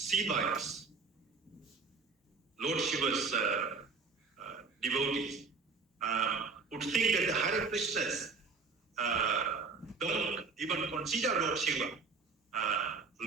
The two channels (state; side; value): quieter; left; 4.6 dB